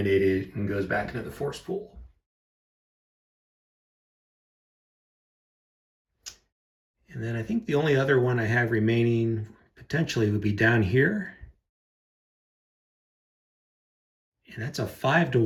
and goes back into the force pool. And then I think the only other one I have remaining potentially would be down here. And that's a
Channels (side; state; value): both; identical; correlation 1.00